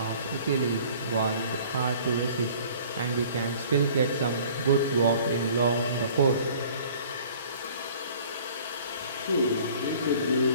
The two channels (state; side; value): inverted; both; correlation -0.51